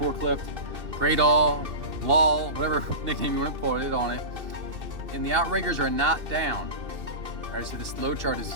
great all, wall, whatever nickname you want to put it on it. And the outriggers are not down. All right, so this load chart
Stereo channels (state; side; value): late; left; 2.6 ms